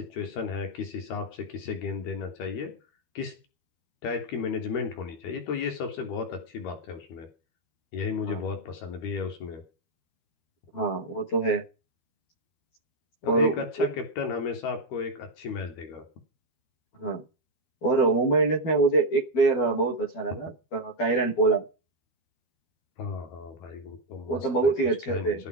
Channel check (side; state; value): right; late; 13 ms